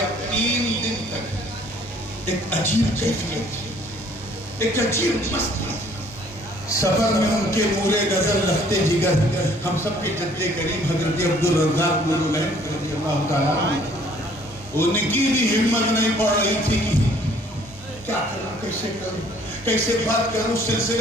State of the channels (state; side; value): normal; both; correlation 0.59